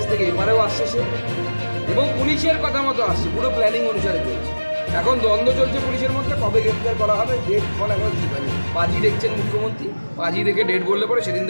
থেকে এপারেও আসছে সে, এবং পুলিশের কথা মতো আসছে, পুরো প্ল্যানিং অনুসারে চলছে। এখন দ্বন্দ্ব চলছে পুলিশের মধ্যে, কবে গ্রেফতার করা হবে ডেট ফল এখন ঠিক হয়নি। পাঁচই দেখছেন মুখ্যমন্ত্রী, পাঁচই দেখে ডেট বললে পরে সেদিন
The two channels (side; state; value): both; inverted; correlation -1.00